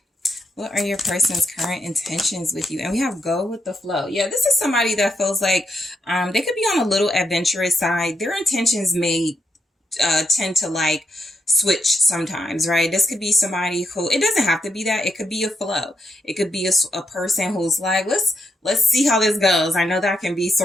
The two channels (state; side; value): normal; both; correlation 0.81